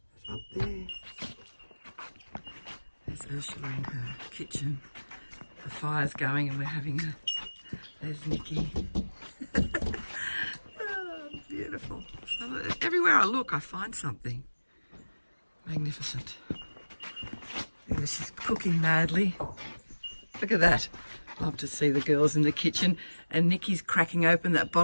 It's up there. There's Ursula in her kitchen. The fire's going and we're having there's Nikki. Oh, beautiful. So everywhere I look, I find something. Magnificent. There she's cooking madly. Look at that. Love to see the girls in the kitchen. And Nikki's cracking open that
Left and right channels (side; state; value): both; inverted; correlation -1.00